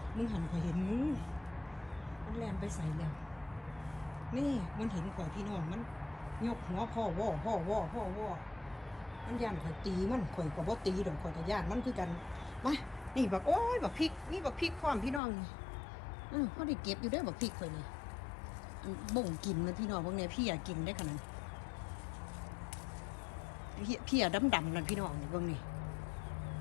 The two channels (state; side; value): drops out; right; at 15.2 s